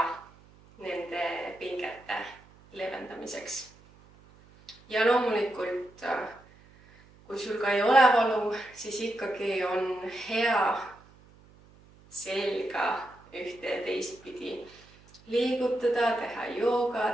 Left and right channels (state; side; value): noise; right; hum, 26 dB below the sound